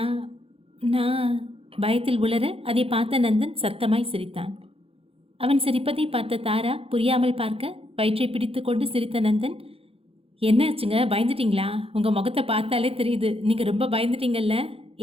நான் பயத்தில் உளர அதை பார்த்த நந்தன் சத்தமாய் சிரித்தான். அவன் சிரிப்பதை பார்த்த தாரா புரியாமல் பார்க்க வயிற்றை பிடித்து கொண்டு சிரித்த நந்தன், என்னாச்சுங்க, பயந்துட்டீங்களா? உங்கள் முகத்தை பார்த்தாலே தெரியுது, நீங்கள் ரொம்ப பயந்துட்டீங்கல்ல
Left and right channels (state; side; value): late; left; 0.27 ms